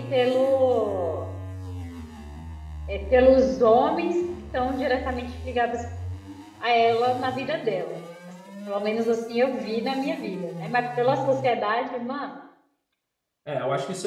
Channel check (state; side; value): identical; both; correlation 1.00